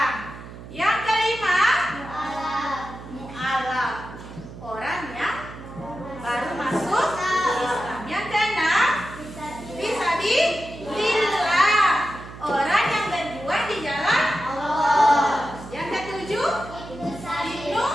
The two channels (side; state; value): right; noise; hum, 14 dB below the sound